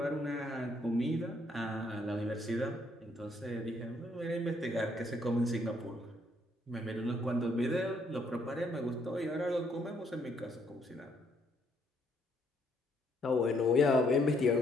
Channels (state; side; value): normal; both; correlation 0.70